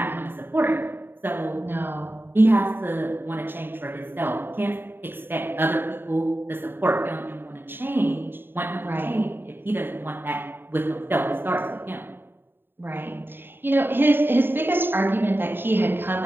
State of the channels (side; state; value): left; late; 0.10 ms